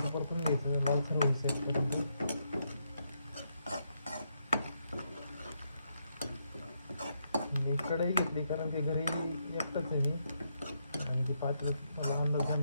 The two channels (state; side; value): inverted; both; correlation -0.79